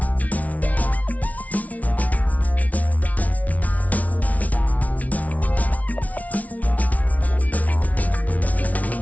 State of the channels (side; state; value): right; late; 0.070 ms